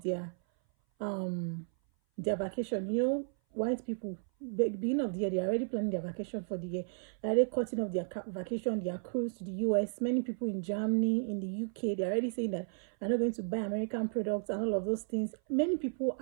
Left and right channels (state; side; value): silent; left; 55 dB below the other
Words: their vacation. White people, beginning of the year, they're already planning their vacation for the year. They're already cutting off their vacation, their cruise to the US. Many people in Germany, in the UK, they're already saying that they're not going to buy American products and all of those things. Many people